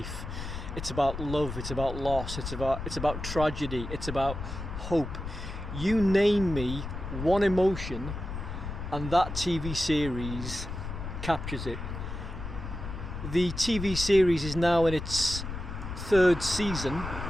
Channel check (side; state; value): left; noise; rumble, 7 dB below the sound